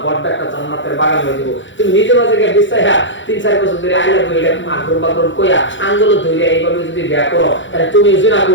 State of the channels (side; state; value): right; late; 0.55 ms